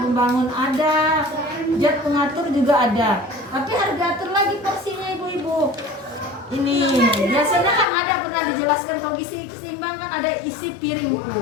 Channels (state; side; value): drops out; right; at 7.9 s